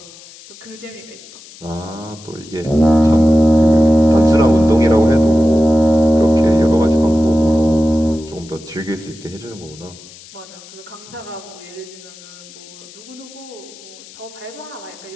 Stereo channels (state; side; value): noise; left; hiss, 20 dB below the sound